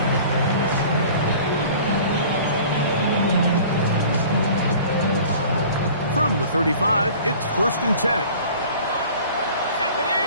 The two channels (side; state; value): both; inverted; correlation -0.45